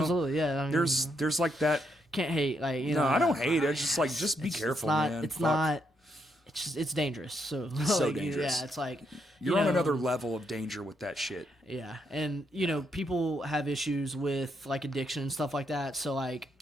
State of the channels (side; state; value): both; normal; correlation 0.78